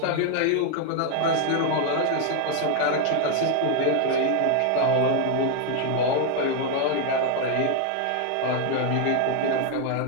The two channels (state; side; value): different; both; correlation 0.01